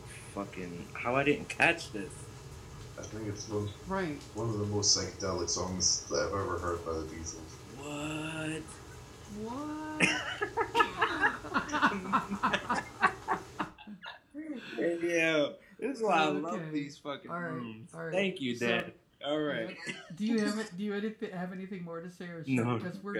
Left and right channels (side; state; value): both; identical; correlation 1.00